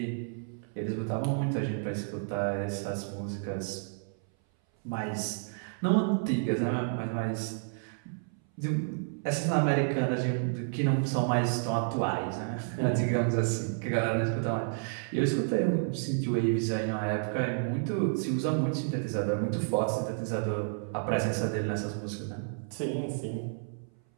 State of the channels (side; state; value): left; silent; 57 dB below the other